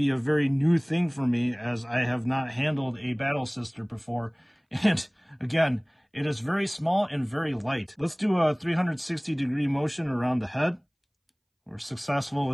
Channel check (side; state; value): both; identical; correlation 1.00